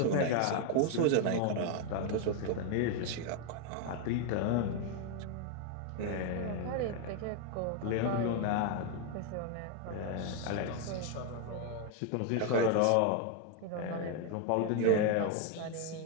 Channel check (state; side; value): different; both; correlation 0.01